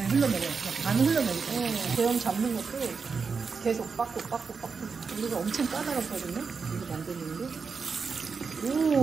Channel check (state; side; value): quieter; left; 5.2 dB